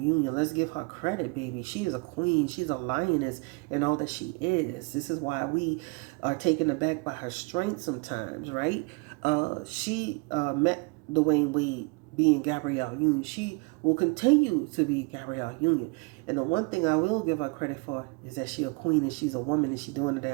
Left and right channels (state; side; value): quieter; left; 30.9 dB